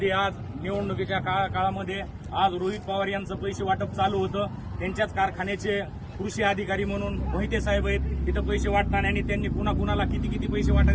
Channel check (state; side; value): identical; both; correlation 1.00